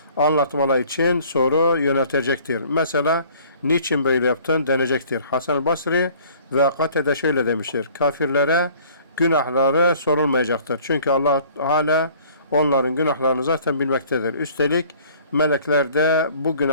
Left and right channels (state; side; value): inverted; both; correlation -0.53